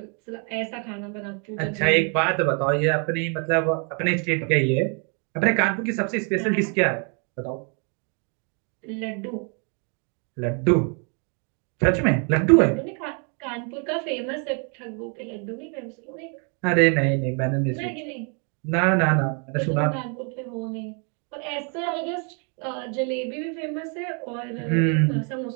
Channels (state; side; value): quieter; left; 38.3 dB